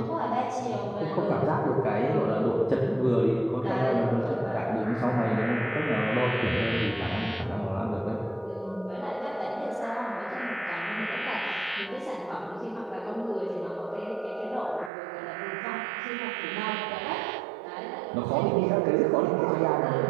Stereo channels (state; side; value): drops out; left; at 14.9 s